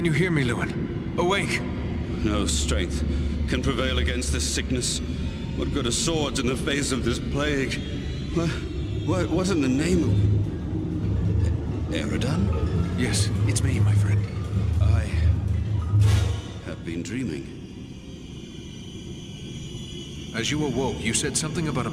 you hear me, Lewin? Awake! No strength can prevail against this sickness. What good are swords in the face of this plague? What in the name of... Eridan? Yes, it's me, my friend. I have been dreaming. As you awoke, you said something about a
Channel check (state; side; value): identical; both; correlation 1.00